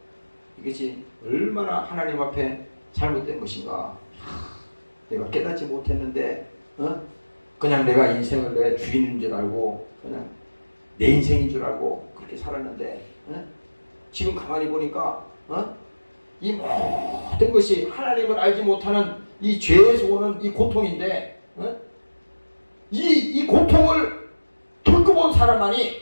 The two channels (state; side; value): inverted; both; correlation -1.00